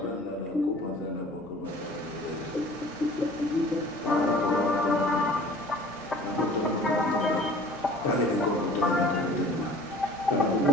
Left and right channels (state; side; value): noise; left; hum, 25 dB below the sound